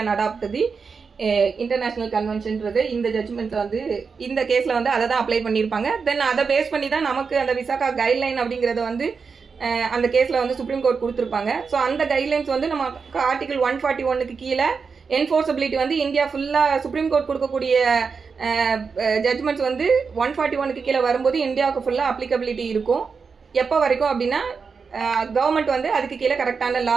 adopt the international கன்வென்ஷன்றது இந்த ஜட்மெண்ட் வந்து இந்த கேஸ்ல வந்து அதை தான் அப்ளை பண்ணியிருப்பாங்க. தென் அதை பேஸ் பண்ணி தான் நமக்கு அந்த விசாகா கைட்லைன் அப்படிங்கறத வந்து அந்த கேஸ்ல வந்து சுப்ரீம் கோர்ட் கொடுத்துருப்பாங்க. ஸோ அந்த கைட்லைன்ஸ் வந்து நம்ம ஆர்டிகல் 141க்கு கீழே என்ஃபோர்ஸபிலிட்டி வந்து இந்தியா ஃபுல்லா சுப்ரீம் கோர்ட் கொடுக்கக்கூடிய ஜட்மெண்ட்ஸ் வந்து 141க்கு கீழே வரும்போது இந்தியாவுக்கு ஃபுல்லா அப்ளிகபிலிட்டி இருக்கும். எப்போ வரைக்கும் அப்படின்னா கவர்மெண்ட் வந்து அதுக்கு கீழே கரெக்டான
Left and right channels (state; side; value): quieter; left; 5.3 dB